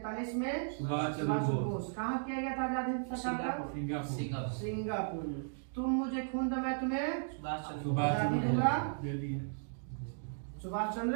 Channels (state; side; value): silent; left; digital silence